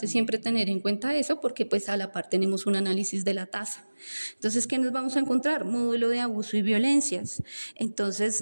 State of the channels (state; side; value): inverted; both; correlation -1.00